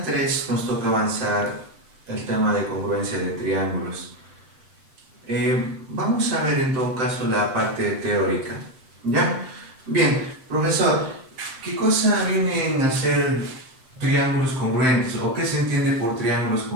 3 nos toca avanzar el tema de congruencia de triángulos. Vamos a ver en todo caso la parte teórica, ¿ya? Bien, profesor, ¿qué cosa vienen a ser triángulos congruentes o qué se entiende por triángulos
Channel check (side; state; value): left; late; 7.7 ms